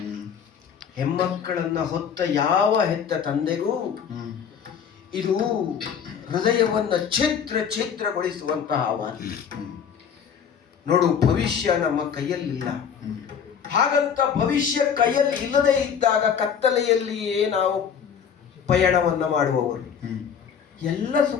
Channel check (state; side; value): quieter; right; 7.4 dB